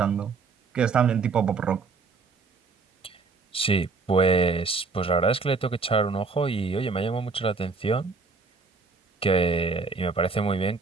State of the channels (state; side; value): quieter; left; 4.4 dB